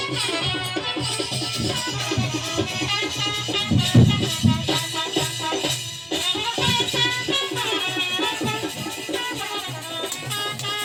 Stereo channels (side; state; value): both; identical; correlation 1.00